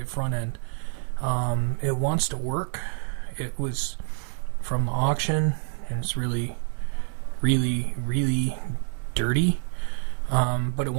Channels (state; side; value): silent; left; 59 dB below the other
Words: front end. It wants to work. It was from the auction, and it's really dirty. But it